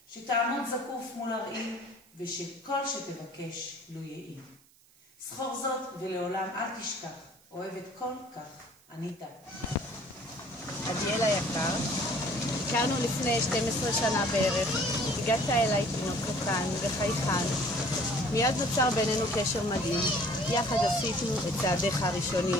שתעמוד זקוף מול הראי, ושכל שתבקש לו יהי. זכור זאת ולעולם אל תשכח, אוהבת כל כך, ענית. עדיאל היקר, הכרנו לפני 12 שנה בערך, הגעת אליי תינוק קטן וחייכן. מיד נוצר בינינו קשר מדהים, יחד עשינו את צעדיך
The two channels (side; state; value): right; noise; hiss, 29 dB below the sound